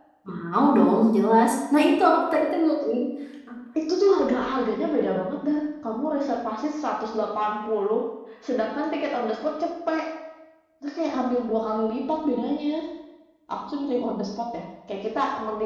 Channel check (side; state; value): both; identical; correlation 1.00